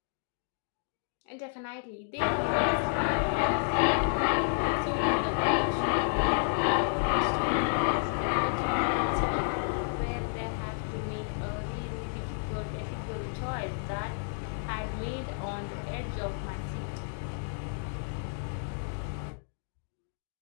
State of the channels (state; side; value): silent; right; digital silence